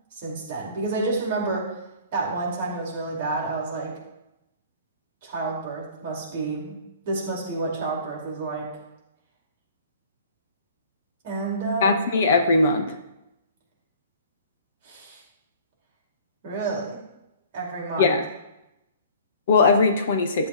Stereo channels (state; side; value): inverted; both; correlation -0.50